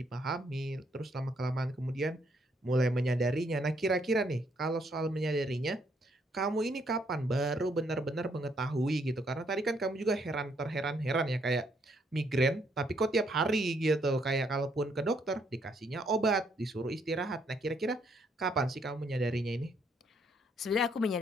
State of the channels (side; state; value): both; normal; correlation 0.71